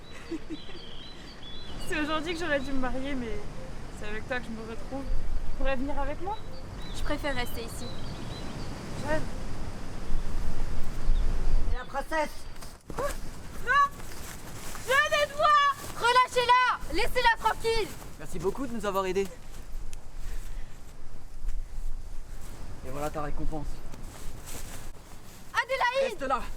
C'est aujourd'hui que j'aurais dû me marier, mais c'est avec toi que je me retrouve. Tu pourrais venir avec moi? Je préfère rester ici. Jeanne. Et la princesse? Jeanne, aide-moi! Relâchez-la! Laissez-la tranquille! Merci beaucoup de nous avoir aidés. Et voilà ta récompense. Adélaïde! Reste là.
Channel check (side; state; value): both; identical; correlation 1.00